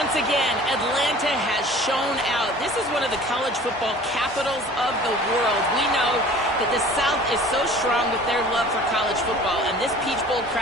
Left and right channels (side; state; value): both; normal; correlation 0.46